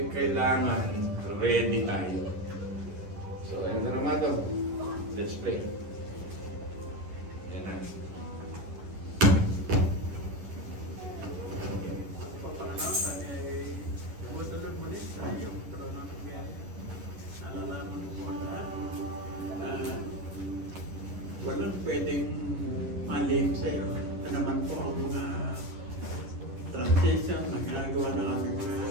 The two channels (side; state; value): left; late; 11 ms